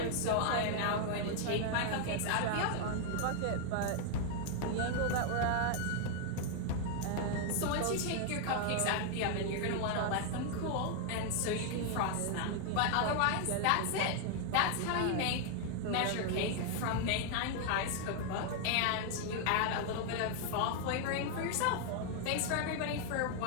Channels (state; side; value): different; both; correlation 0.00